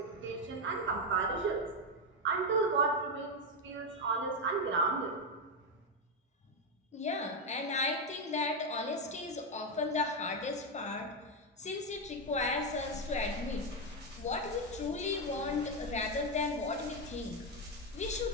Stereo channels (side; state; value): both; normal; correlation 0.06